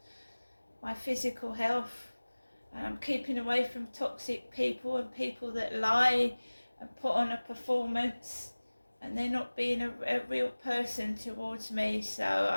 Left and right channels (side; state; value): both; inverted; correlation -1.00